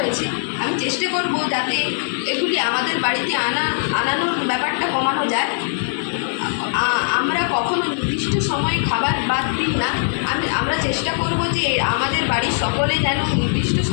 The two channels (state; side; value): silent; right; digital silence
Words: আমি চেষ্টা করব যাতে এগুলি আমাদের বাড়িতে আনানোর ব্যাপারটা কমানো যায়। আমরা কখনো নির্দিষ্ট সময়ে খাবার বাদ দিই না। আমরা চেষ্টা করব যে আমাদের বাড়ির সকলে যেন নির্দিষ্ট